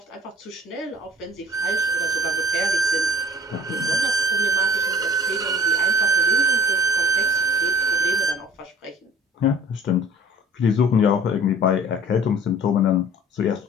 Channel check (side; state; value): both; normal; correlation 0.47